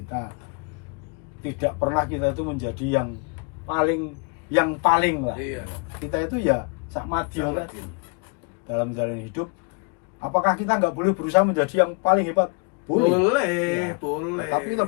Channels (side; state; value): right; quieter; 33.0 dB